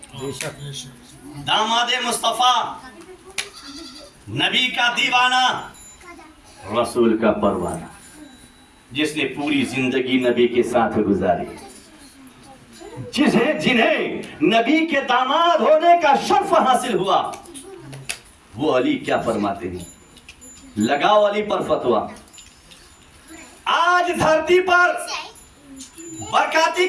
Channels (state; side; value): identical; both; correlation 1.00